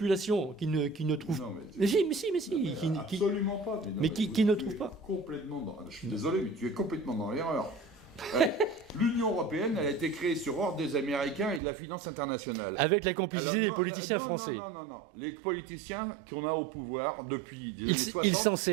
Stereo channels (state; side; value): drops out; left; at 11.6 s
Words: qui ne trouve pas. Mais si. Absolument pas. Mais qui ne trouve pas. Je suis désolé, mais tu es complètement dans l'erreur. L'Union européenne, elle a été créée sur ordre des Américains et de la finance internationale. Avec la complicité des politiciens français. Non. Les politiciens qu'on a au pouvoir depuis les années 60... Ils s'en